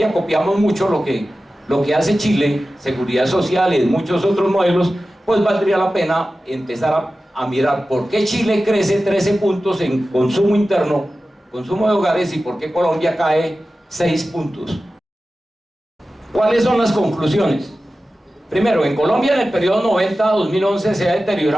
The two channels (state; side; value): normal; both; correlation 0.94